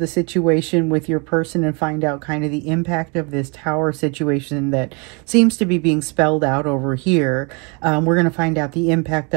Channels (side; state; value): left; quieter; 32.8 dB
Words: situation with your person and find out kind of the impact of this tower situation that seems to be being spelled out over here. We're going to find out the impact